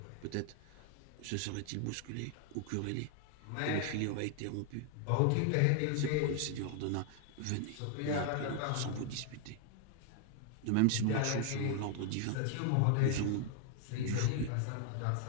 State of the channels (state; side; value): different; both; correlation 0.00